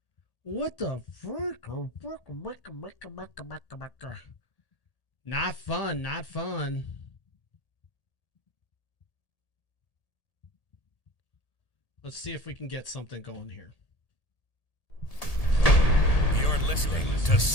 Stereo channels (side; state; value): right; late; 1.8 ms